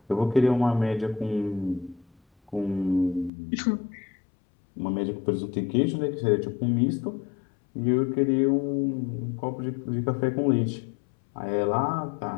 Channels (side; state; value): right; drops out; at 3.3 s